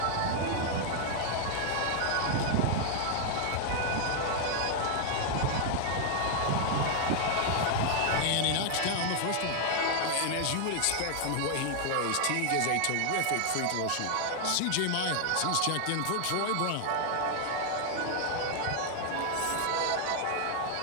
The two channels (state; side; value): different; both; correlation 0.00